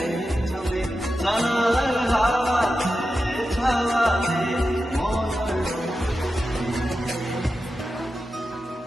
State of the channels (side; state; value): both; normal; correlation 0.91